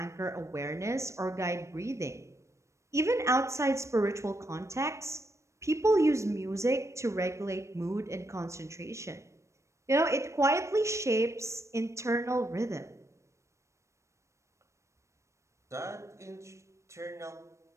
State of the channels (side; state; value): left; late; 0.14 ms